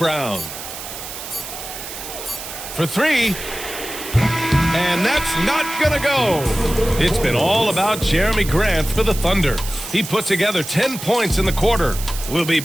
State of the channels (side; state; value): right; noise; hiss, 10 dB below the sound